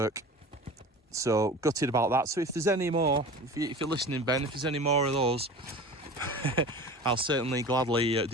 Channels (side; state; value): both; normal; correlation 0.36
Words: so gutted about that. So if there's any more, if you're listening, Ben, if there's any more of those, I'll certainly gladly